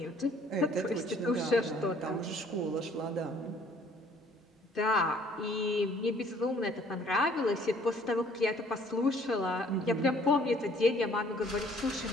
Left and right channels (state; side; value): normal; both; correlation 0.58